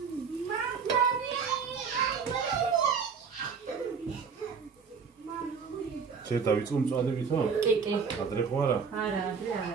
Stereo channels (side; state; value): left; quieter; 5.9 dB